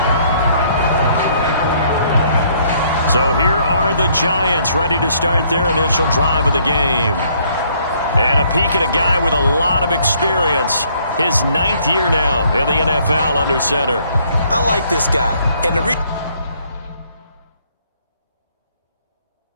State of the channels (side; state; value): both; inverted; correlation -0.65